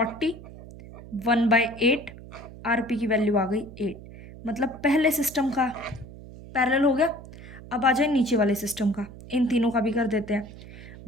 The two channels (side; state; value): right; noise; hum, 16 dB below the sound